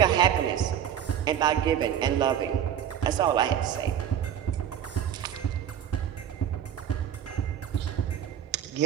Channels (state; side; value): quieter; left; 9.8 dB